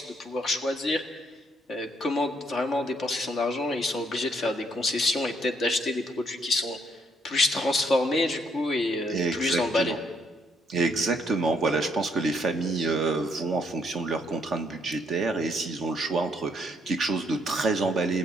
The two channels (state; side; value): normal; both; correlation 0.71